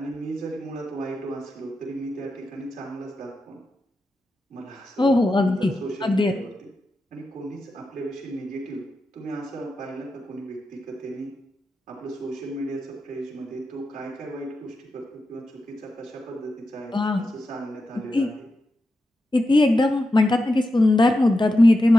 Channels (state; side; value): normal; both; correlation 0.89